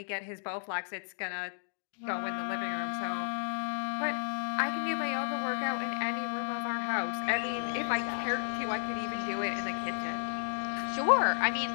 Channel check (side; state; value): right; silent; digital silence